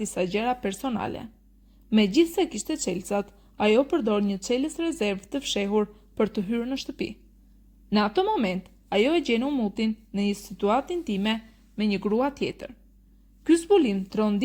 gjëra personale. Megjithse kishte çelësat, ajo përdor një çelës rezervë të fshehur për të hyrë në shtëpi. Në atë moment, ajo e gjen Umutin në një situatë intime me një grua tjetër. Ky zbulim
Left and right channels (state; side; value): identical; both; correlation 1.00